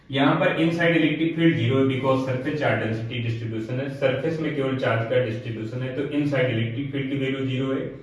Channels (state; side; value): identical; both; correlation 1.00